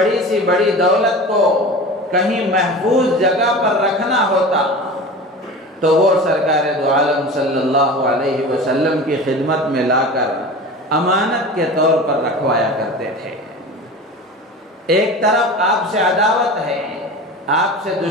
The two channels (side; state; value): both; normal; correlation 0.34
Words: سی بڑی دولت کو کہیں محفوظ جگہ پر رکھنا ہوتا تو وہ سرکار دو عالم صلی اللہ علیہ وسلم کی خدمت میں لا کر امانت کے طور پر رکھوایا کرتے تھے۔ ایک طرف آپ سے عداوت ہے، آپ سے